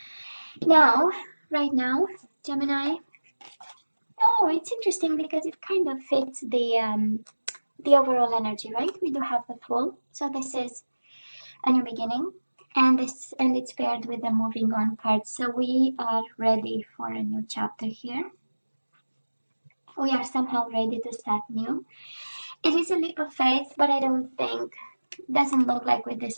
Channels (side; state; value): both; inverted; correlation -1.00